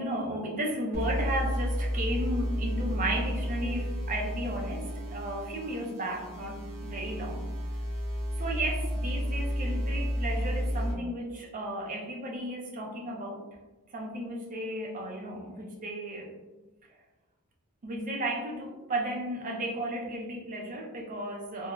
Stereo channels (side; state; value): both; normal; correlation 0.57